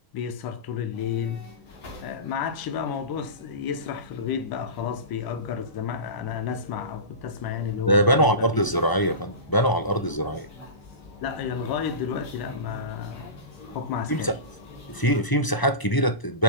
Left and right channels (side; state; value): right; late; 1.0 ms